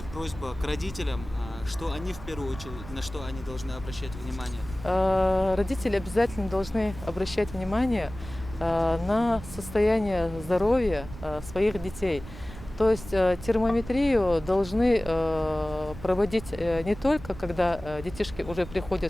просьба к родителям, что они в первую очередь, на что они должны обращать внимание? Родители обязательно должны обращать внимание на состояние здоровья своих детей. То есть термометрию должны проводить не только, когда детишки уже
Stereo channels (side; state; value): right; noise; rumble, 14 dB below the sound